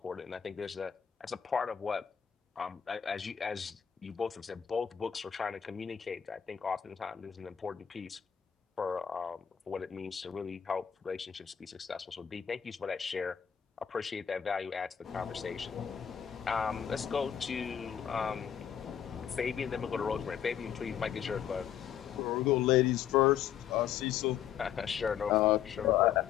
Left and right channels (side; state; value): right; quieter; 8.9 dB